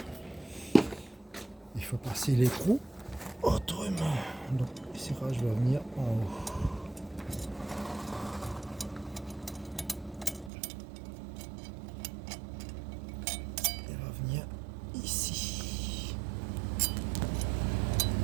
Il faut passer l'écrou autrement. Donc le serrage va venir en haut. Il va venir ici.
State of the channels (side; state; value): left; drops out; at 10.5 s